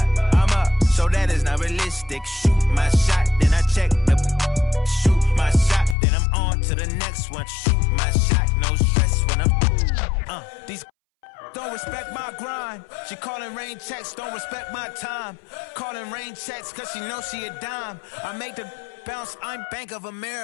I'm up, so that is not realistic. Shoot my shot, then I check the. Shoot my shot, then I'm on to the next one. Shoot my shot, no stress when I'm. These don't respect my grind. She calling rain checks, don't respect my time. Calling rain checks, cause she knows she a dime. I make the bounce, I'm Bank of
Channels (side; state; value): right; drops out; at 6.0 s